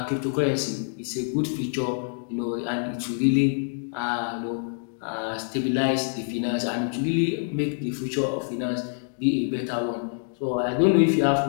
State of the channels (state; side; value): silent; right; digital silence